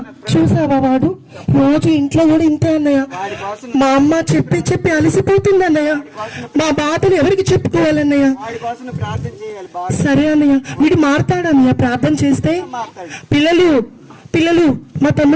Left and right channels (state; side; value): identical; both; correlation 1.00